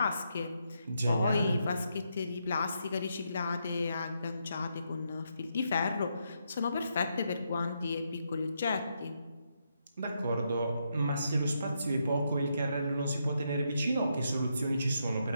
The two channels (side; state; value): both; inverted; correlation -0.80